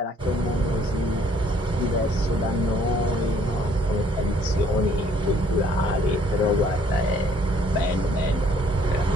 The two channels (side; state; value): both; normal; correlation 0.62